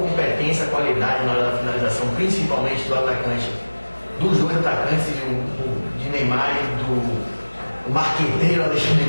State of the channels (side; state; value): both; inverted; correlation -1.00